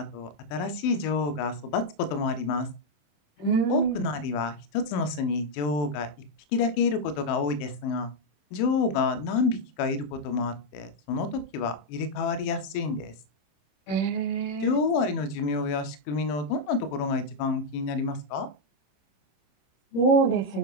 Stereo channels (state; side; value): late; right; 27 ms